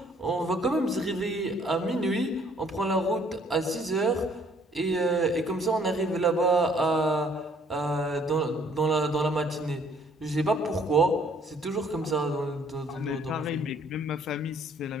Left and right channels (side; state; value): both; normal; correlation 0.61